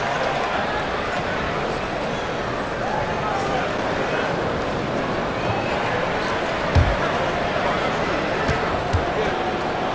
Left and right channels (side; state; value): both; identical; correlation 1.00